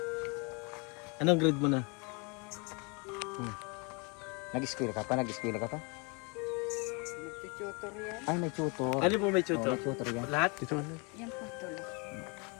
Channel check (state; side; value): quieter; right; 31.8 dB